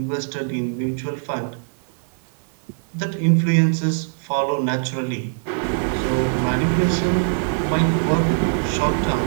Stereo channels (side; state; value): left; silent; 64 dB below the other